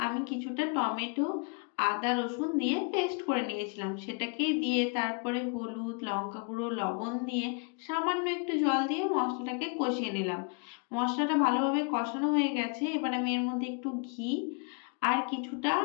আমি কিছুটা টমেটো, আদা রসুন দিয়ে পেস্ট করে নিয়েছিলাম। সেটাকেই দিয়ে তারপরে হলুদ, লঙ্কা গুঁড়ো, লবণ দিয়ে সামান্য একটু জল দিয়ে মশলাটাকে কষিয়ে নিলাম। মশলাটা ভালোভাবে কষানো হয়ে গেছে। এবার আমি এর মধ্যে একটু ঘি আর কিছুটা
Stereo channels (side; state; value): right; quieter; 35.0 dB